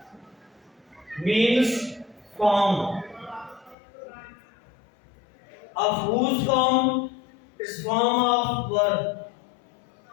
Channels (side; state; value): right; drops out; at 3.8 s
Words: means form. Of whose form is form of verb.